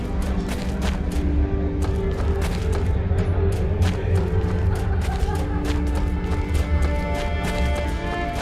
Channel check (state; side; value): identical; both; correlation 1.00